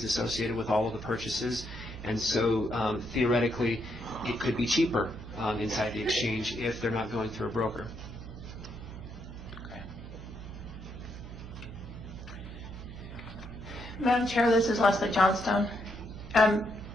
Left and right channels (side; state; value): right; noise; hum, 12 dB below the sound